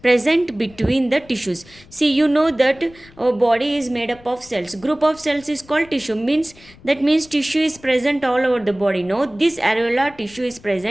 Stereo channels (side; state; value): left; noise; rumble, 24 dB below the sound